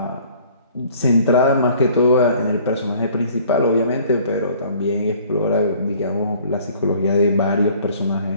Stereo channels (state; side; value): inverted; both; correlation -0.54